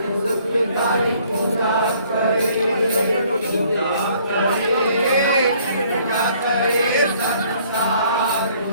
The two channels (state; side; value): inverted; both; correlation -0.61